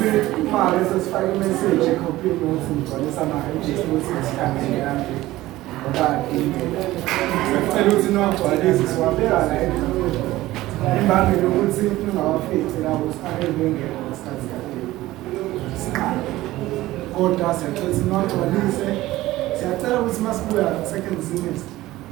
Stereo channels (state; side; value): quieter; left; 16.9 dB